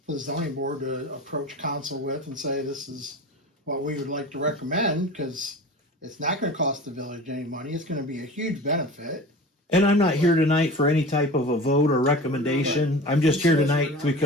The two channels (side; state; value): both; normal; correlation 0.35